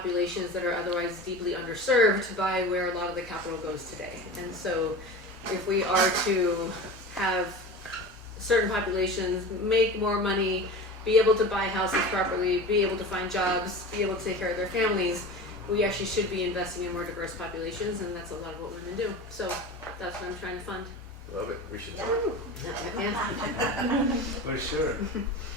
that are otherwise deeply underserved by where a lot of the capital goes today. And so if we are to have certain populations make more money, be able to buy houses properly, be able to find jobs, be able to take care of their families, we actually should be investing in more diverse populations, and that's a lot of what women do. So that's what I'm trying to fund. Love it. We should talk. Yeah. For sure.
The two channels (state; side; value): normal; both; correlation 0.32